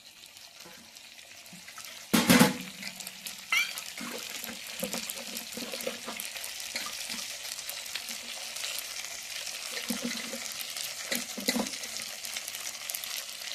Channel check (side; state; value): both; identical; correlation 1.00